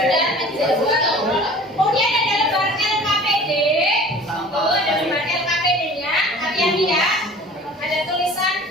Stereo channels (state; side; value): normal; both; correlation 0.45